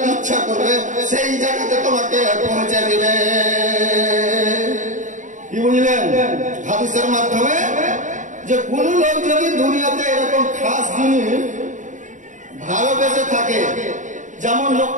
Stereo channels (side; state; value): left; late; 0.36 ms